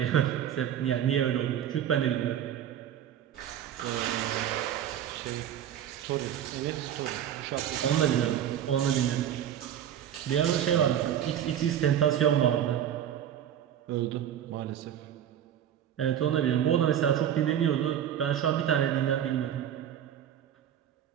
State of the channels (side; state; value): left; quieter; 10.1 dB